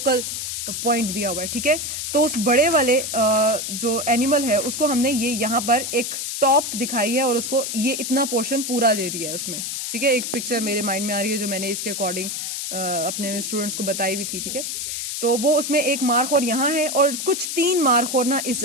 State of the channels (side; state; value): left; noise; hiss, 4 dB below the sound